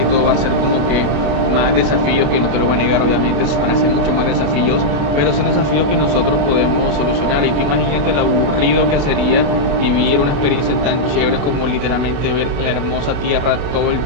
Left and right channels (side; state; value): left; late; 28 ms